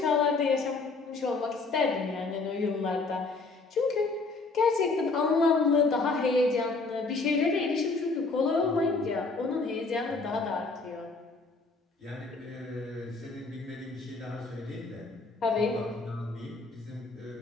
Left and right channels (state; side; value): quieter; right; 3.8 dB